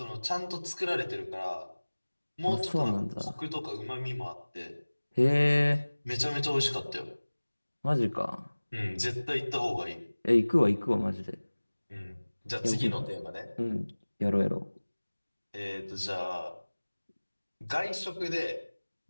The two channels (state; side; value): inverted; both; correlation -1.00